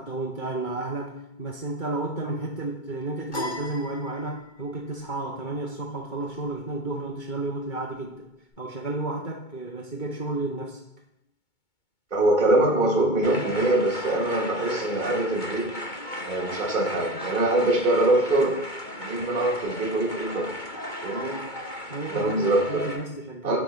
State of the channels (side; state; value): right; late; 2.2 ms